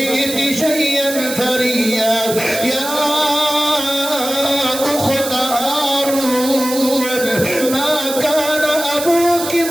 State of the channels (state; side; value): noise; right; hiss, 7 dB below the sound